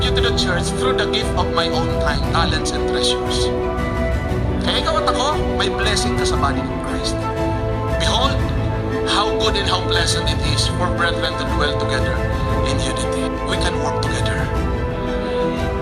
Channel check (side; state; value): both; identical; correlation 1.00